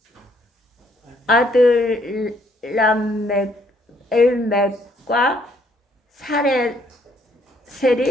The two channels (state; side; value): normal; both; correlation 0.67